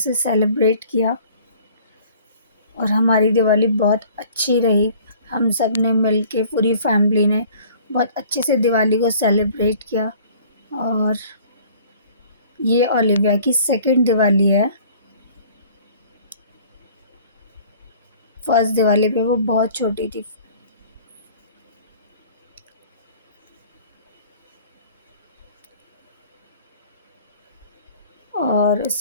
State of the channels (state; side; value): inverted; both; correlation -0.51